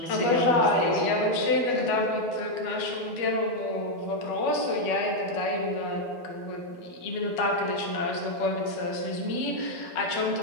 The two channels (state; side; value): late; right; 12 ms